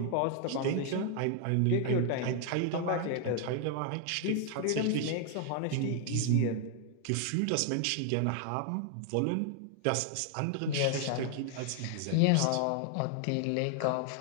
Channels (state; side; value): different; both; correlation 0.00